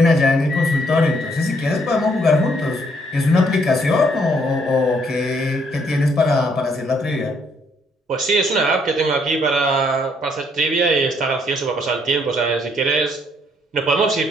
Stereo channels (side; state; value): both; normal; correlation 0.69